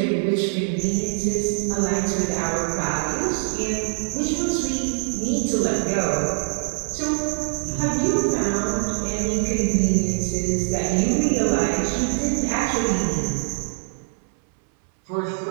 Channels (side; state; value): left; silent; 63 dB below the other